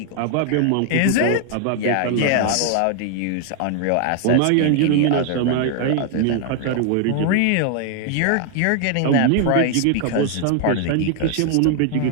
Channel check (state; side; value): different; both; correlation 0.00